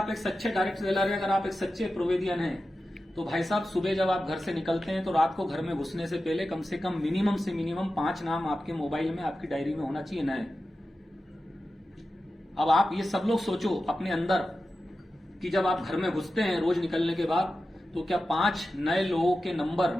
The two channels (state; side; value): normal; both; correlation 0.93